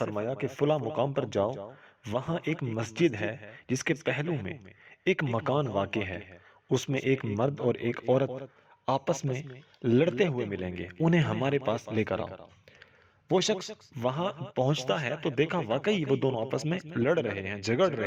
کہ فلاں مقام پر جاؤ، وہاں ایک مسجد ہے جس کے پہلو میں ایک مکان واقع ہے، اس میں ایک مرد اور ایک عورت آپس میں لڑتے ہوئے ملیں گے، انہیں ہمارے پاس لے کر آؤ۔ وہ شخص وہاں پہنچتا ہے تو دیکھا واقعی وہ دونوں آپس میں لڑ رہے ہیں، جھگڑ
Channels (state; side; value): identical; both; correlation 1.00